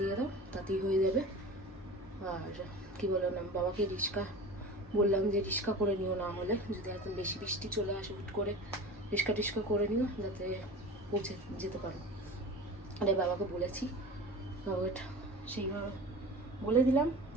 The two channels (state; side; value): normal; both; correlation 0.35